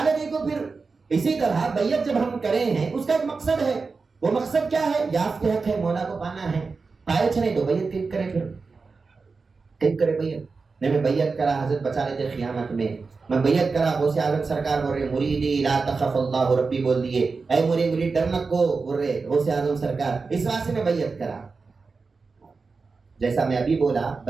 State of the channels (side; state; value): left; quieter; 4.4 dB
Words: گئی کو پھر۔ اسی طرح بیعت جب ہم کرے ہیں، اس کا ایک مقصد ہے، وہ مقصد کیا ہے؟ یافت حق ہے، مولا کو پانا ہے۔ پائے چھنے تو بیعت کیوں کرے؟ پھر کیوں کرے بیعت؟ نہیں میں بیعت کرا، حضرت بچا لیتے قیامت میں بیعت کرا، غوث اعظم سرکار بول رہے مریدی لا تخف اللہ ربی بول دیے، اے مرید ڈرنا کو بول رہے غوث اعظم سرکار، اس واسطے میں بیعت کرا۔ جیسا میں ابھی بولا